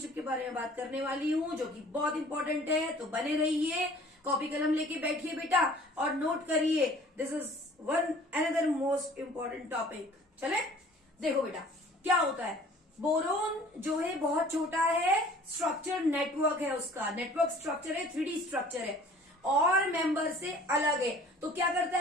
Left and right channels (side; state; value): both; normal; correlation 0.50